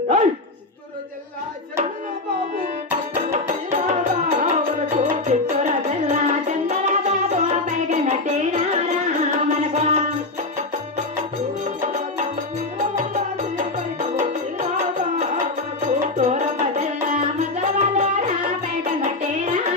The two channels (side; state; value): right; quieter; 3.1 dB